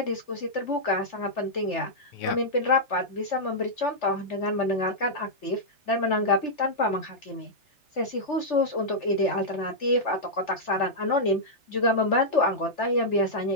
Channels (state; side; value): late; right; 3.4 ms